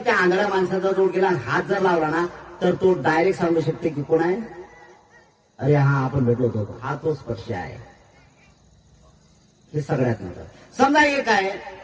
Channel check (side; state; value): both; identical; correlation 1.00